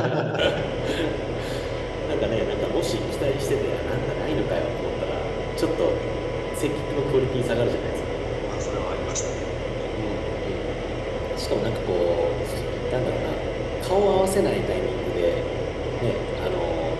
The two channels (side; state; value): both; identical; correlation 1.00